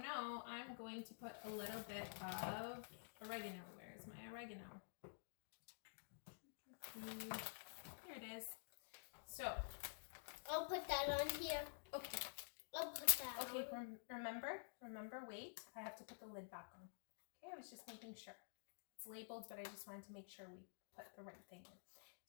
know. I'm going to put a little bit of oregano. Where's my oregano? Here it is. So. I'll put that on here. Okay. I'll put that on. Okay, remember, wait. I have to put the lid back on. Okay, I was just making sure. It's labeled, but I just wanted to make sure we put the right thing in.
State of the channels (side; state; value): right; silent; digital silence